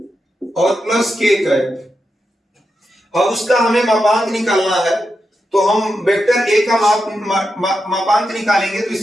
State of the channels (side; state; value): both; normal; correlation 0.87